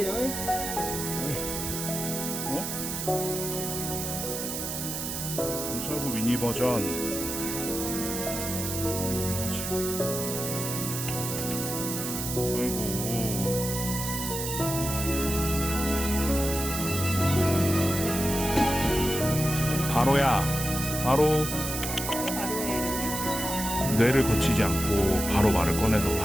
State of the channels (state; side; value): noise; right; hiss, 4 dB below the sound